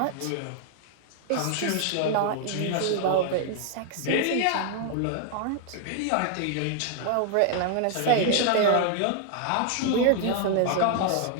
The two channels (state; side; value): different; both; correlation 0.00